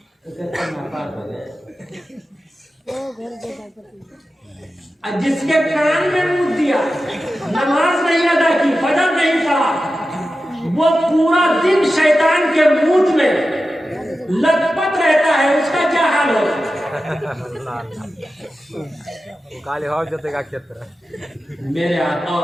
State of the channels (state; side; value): normal; both; correlation 0.93